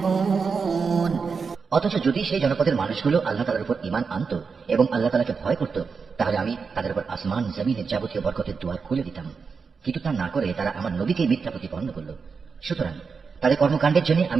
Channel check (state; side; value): quieter; left; 5.3 dB